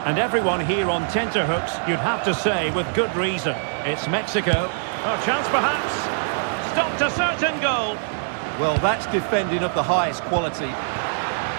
And everyone here on tenterhooks, you'd have to say, with good reason. It's Mexico. A chance perhaps. Stopped a certain goal. Well, that's defending of the highest quality.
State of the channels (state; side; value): silent; left; 63 dB below the other